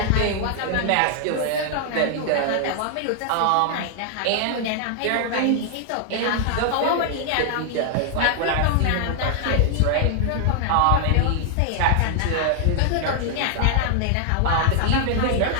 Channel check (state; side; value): different; both; correlation 0.00